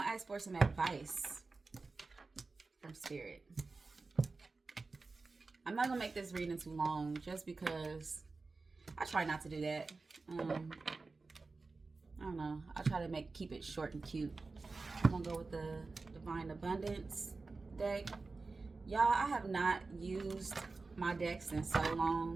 to ask for some advice from Spirit. I'm not going to make this reading too long just because I try not to do that. I don't know. I try to keep it short and cute. I'm going to go with the Divine Abundance deck. Y'all, I have not used my decks in so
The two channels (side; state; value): left; quieter; 3.9 dB